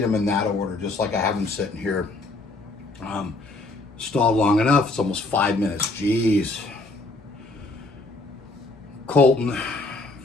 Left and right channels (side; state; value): right; quieter; 3.1 dB